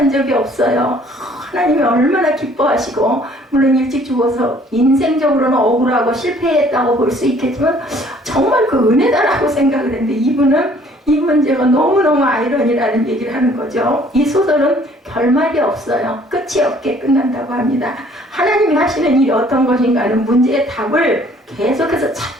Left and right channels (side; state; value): both; normal; correlation 0.58